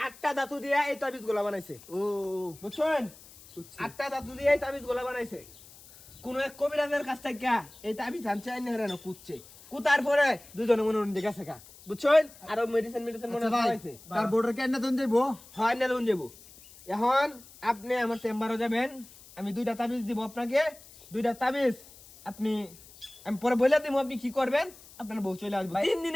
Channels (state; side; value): noise; left; hiss, 21 dB below the sound